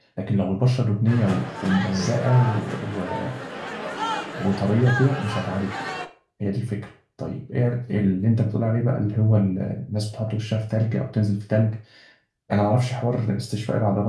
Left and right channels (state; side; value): identical; both; correlation 1.00